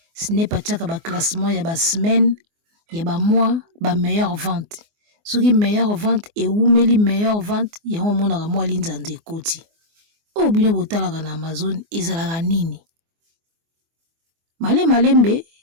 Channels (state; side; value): late; left; 24 ms